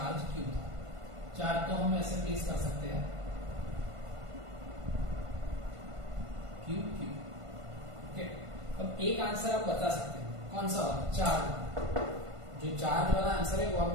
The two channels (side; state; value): left; late; 1.5 ms